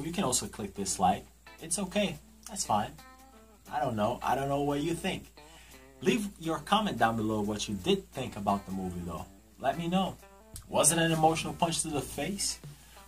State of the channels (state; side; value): identical; both; correlation 1.00